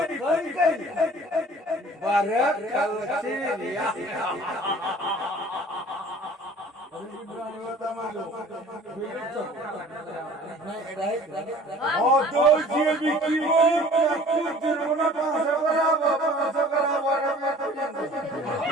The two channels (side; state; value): both; normal; correlation 0.48